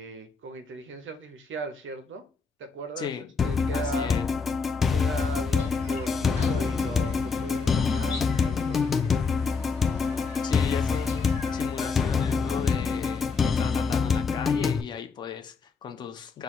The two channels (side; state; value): right; quieter; 4.8 dB